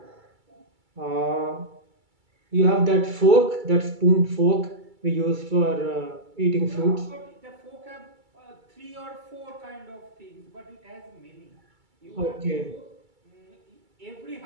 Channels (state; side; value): late; left; 2.3 ms